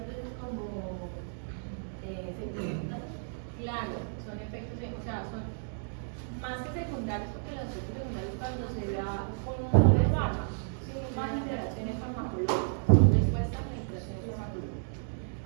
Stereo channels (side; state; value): left; silent; digital silence